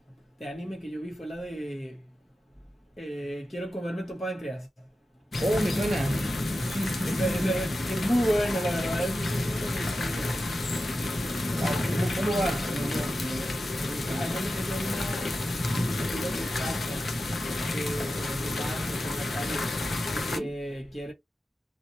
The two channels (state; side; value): normal; both; correlation 0.92